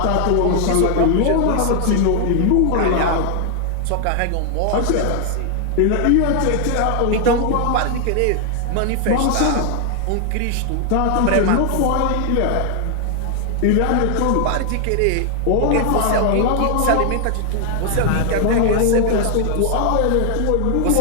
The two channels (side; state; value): both; different; correlation 0.00